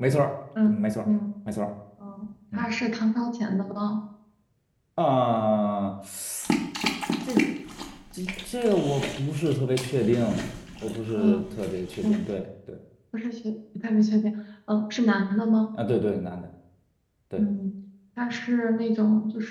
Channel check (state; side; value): identical; both; correlation 1.00